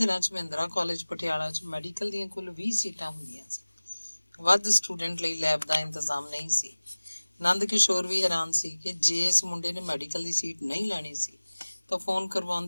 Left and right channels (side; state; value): both; inverted; correlation -1.00